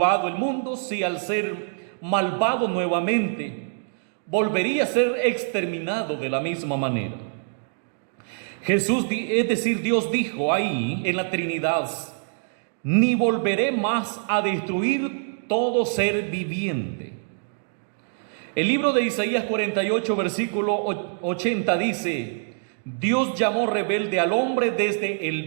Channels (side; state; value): left; silent; digital silence